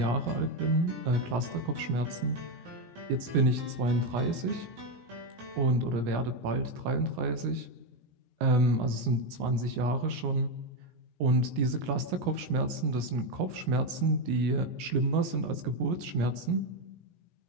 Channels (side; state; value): left; late; 17 ms